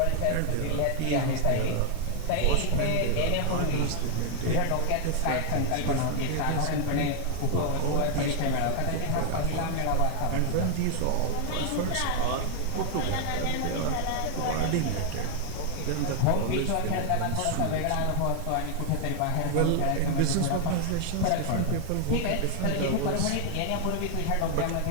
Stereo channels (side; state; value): both; different; correlation 0.00